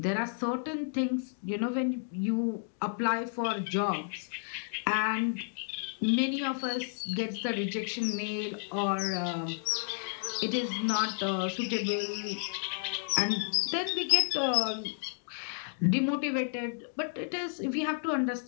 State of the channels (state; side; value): silent; right; digital silence